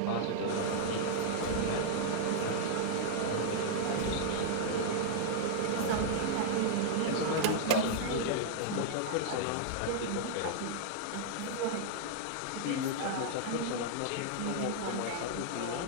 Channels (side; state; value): both; different; correlation -0.01